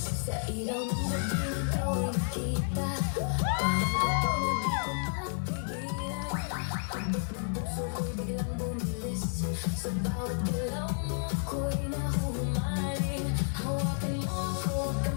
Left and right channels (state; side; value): silent; right; digital silence